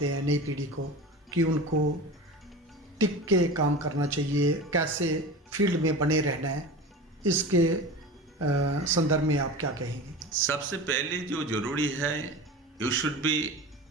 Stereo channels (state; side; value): normal; both; correlation 0.31